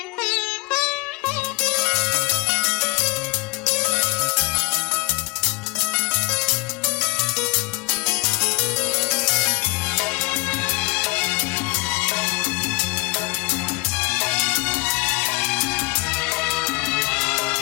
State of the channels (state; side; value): quieter; right; 26.2 dB